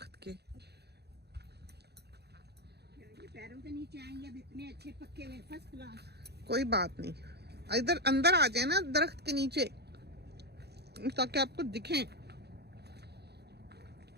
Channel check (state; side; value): late; left; 0.48 ms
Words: के। ये पैरों के नीचे आएंगे, अब इतने अच्छे पक्के हुए, फर्स्ट क्लास। कोई बात नहीं, इधर अंदर आ जाए ना दरख्त के नीचे, ताकि आपको दिखें।